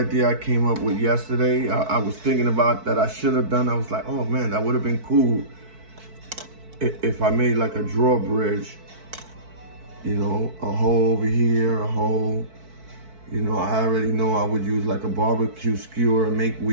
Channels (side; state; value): left; late; 4.6 ms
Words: I came up with yesterday. I was thinking about that I should have done. I was like, oh man, that would have been cool if I made like a drawbridge. You know, a hole over here, a hole. You know, I already know I would use like a barbecue skewer and make